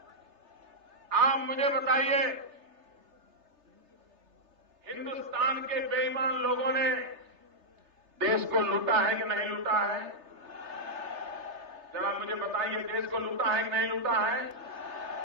आप मुझे बताइए, हिंदुस्तान के बेईमान लोगों ने देश को लूटा है कि नहीं लूटा है? जरा मुझे बताइए, देश को लूटा है कि नहीं लूटा है?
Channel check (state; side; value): late; left; 3.3 ms